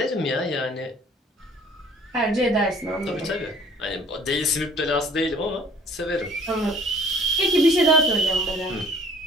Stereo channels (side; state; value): both; normal; correlation 0.54